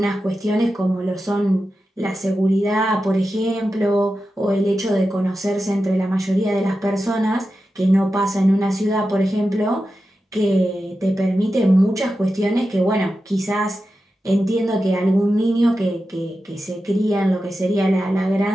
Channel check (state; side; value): normal; both; correlation 0.91